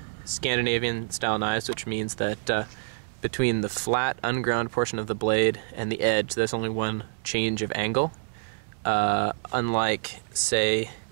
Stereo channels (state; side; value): silent; left; 60 dB below the other